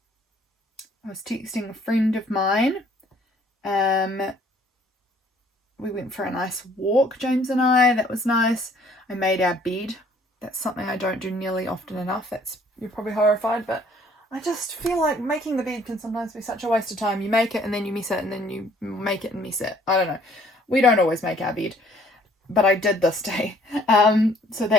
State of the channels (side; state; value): both; normal; correlation 0.60